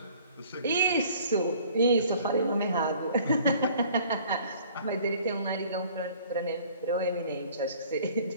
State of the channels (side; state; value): both; inverted; correlation -0.53